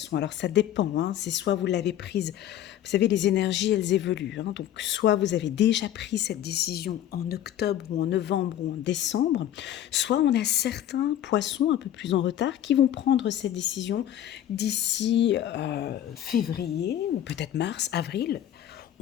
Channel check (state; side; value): quieter; right; 11.5 dB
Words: Alors ça dépend, c'est soit vous l'avez prise, vous savez les énergies elles évoluent, donc soit vous avez déjà pris cette décision en octobre ou en novembre ou en décembre, soit on a certains poissons un peu plus en retard qui vont prendre cette décision d'ici février ou peut-être mars, avril.